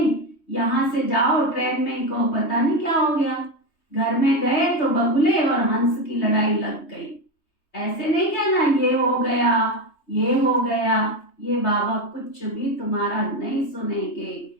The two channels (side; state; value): right; late; 3.2 ms